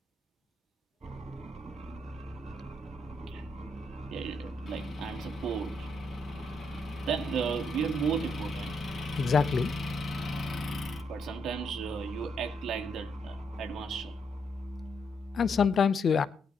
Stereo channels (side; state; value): both; normal; correlation 0.77